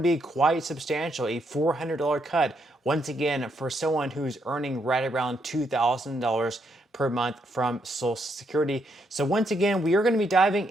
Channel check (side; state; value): both; normal; correlation 0.77